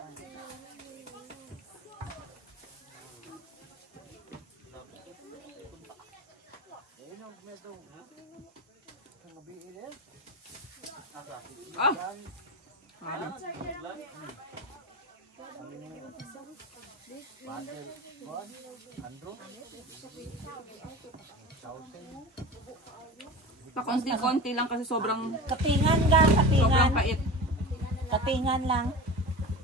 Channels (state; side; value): normal; both; correlation 0.31